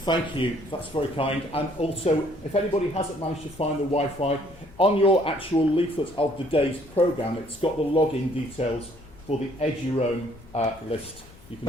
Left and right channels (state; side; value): noise; left; rumble, 23 dB below the sound